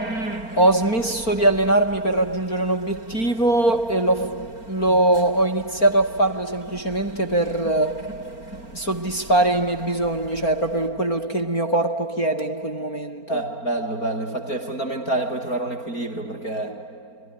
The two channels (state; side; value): late; right; 4.4 ms